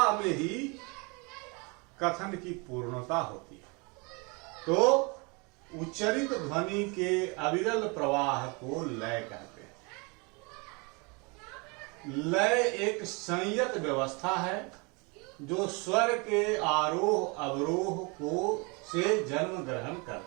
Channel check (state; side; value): quieter; left; 30.0 dB